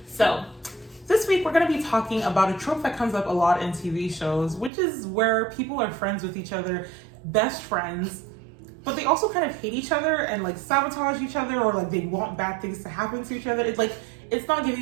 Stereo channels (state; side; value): drops out; left; at 4.7 s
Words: So, this week we're going to be talking about a trope that comes up a lot in TV shows, which is where people are friends with each other, best friends, but they also kind of hate each other and like sabotage each other, or like they want bad things to happen to each other. It's not